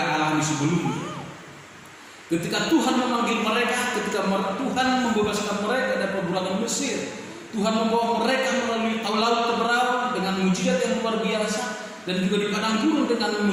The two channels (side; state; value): both; identical; correlation 1.00